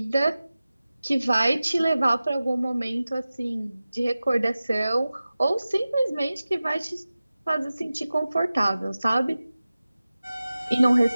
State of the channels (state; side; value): inverted; both; correlation -0.96